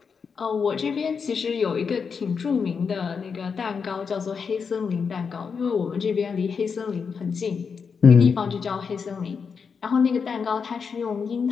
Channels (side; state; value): right; quieter; 5.9 dB